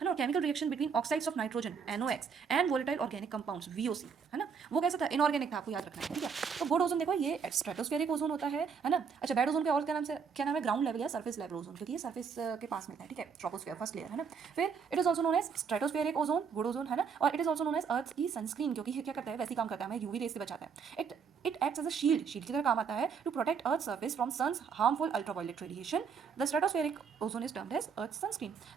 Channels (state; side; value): quieter; left; 6.2 dB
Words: ना। Chemical reaction between oxides of nitrogen NOx and volatile organic compounds VOC, है ना। वो कैसा था? इनऑर्गेनिक था, आपको याद रखना है, ठीक है। तो गुड ओजोन देखो ये स्ट्रेटोस्फेरिक ओजोन होता है ना। अच्छा, बैड ओजोन के और क्या नाम है? ग्राउंड लेवल या सरफेस लेवल ओजोन, क्योंकि ये सरफेस के पास मिलता है, ठीक है। ट्रोपोस्फेयर फर्स्ट लेयर है ना। फिर it is also known as stratospheric ozone, good ozone, है ना। और it is also known as earth की सनस्क्रीन, क्योंकि ये क्या करता है? वैसे ही काम करता है, हमें यूवी रेस से बचाता है। It acts as a shield की तरह काम आता है to protect earth surface from sun's harmful ultraviolet radiation. The stratospheric ozone is termed as earth sunscreen.